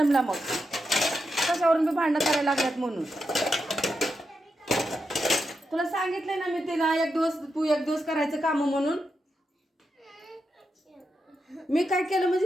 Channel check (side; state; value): both; normal; correlation 0.86